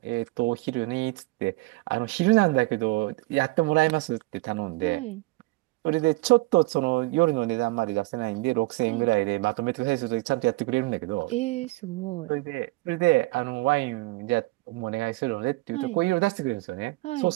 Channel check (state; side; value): quieter; left; 22.4 dB